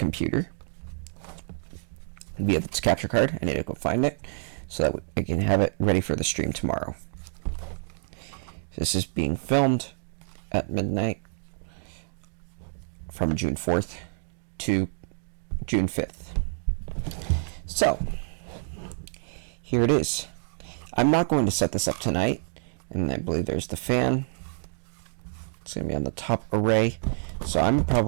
via its capture card. I need to go find it so that I can have it ready for the stream tomorrow. This is being filmed at midnight from June 4th to June 5th. So, here it is. I'm not going to set this up tonight, and I believe there's the fan. It's going to be on the top array, so I'm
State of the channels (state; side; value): silent; left; digital silence